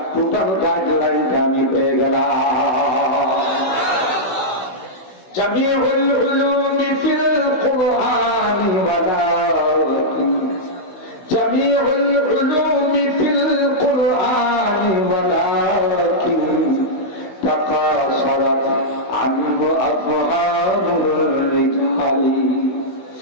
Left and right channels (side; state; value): right; late; 16 ms